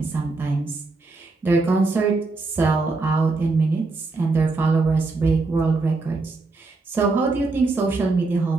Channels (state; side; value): quieter; left; 3.6 dB